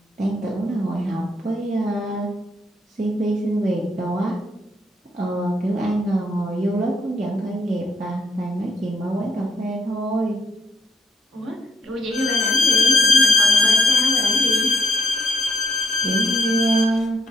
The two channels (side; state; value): both; normal; correlation 0.71